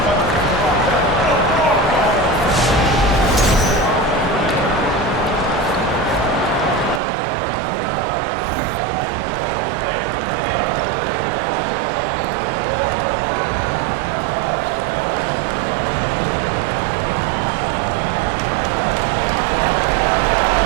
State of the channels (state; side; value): drops out; left; at 7.0 s